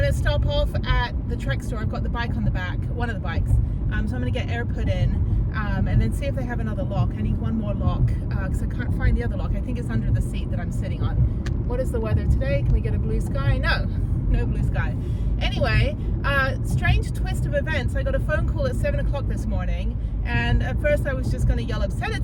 to stop off at the Trek store. I've got the bike on the back, one of the bikes. So I'm going to get air put in and then see if they have another lock. I need one more lock because I can't find the other lock. I think it's under the seat that I'm sitting on. What is the weather today? Can we get a blue sky? No blue sky. Anyway, strange twist of events. I got a phone call at 7 o'clock this morning, and at first I was just going to yell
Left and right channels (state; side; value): identical; both; correlation 1.00